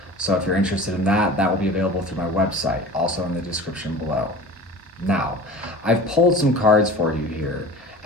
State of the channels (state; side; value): normal; both; correlation 0.38